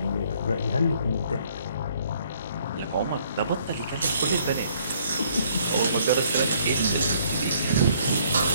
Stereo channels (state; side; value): inverted; both; correlation -0.64